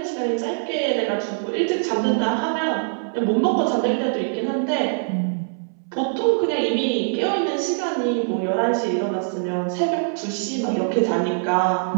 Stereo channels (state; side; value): silent; left; 64 dB below the other